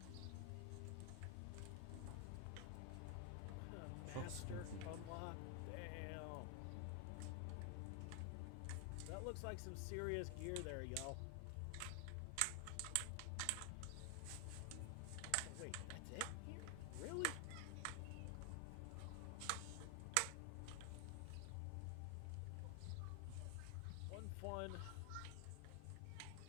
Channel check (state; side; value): different; both; correlation 0.00